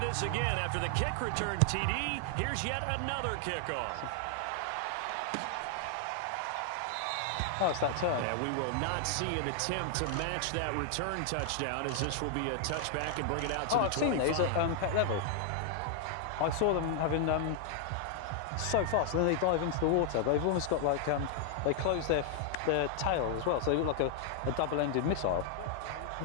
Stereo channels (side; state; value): both; different; correlation 0.00